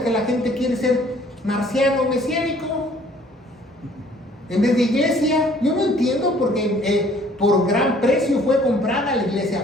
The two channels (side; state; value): both; normal; correlation 0.57